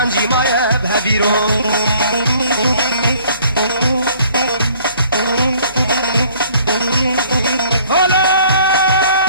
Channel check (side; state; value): both; inverted; correlation -0.57